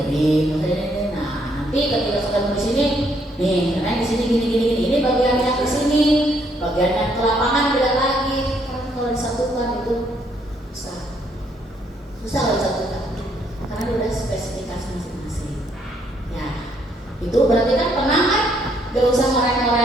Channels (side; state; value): both; normal; correlation 0.70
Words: Nah nanti ketika sudah di sini nih, karena di sini gini, ini bagian yang ke sini, bagian yang ke lapangan beda lagi. Karena kalau di Tapi kan tenang kan, gak usah